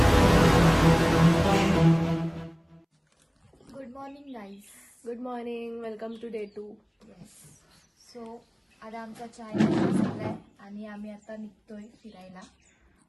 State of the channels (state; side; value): identical; both; correlation 1.00